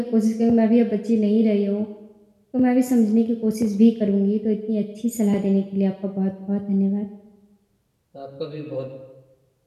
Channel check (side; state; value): both; identical; correlation 1.00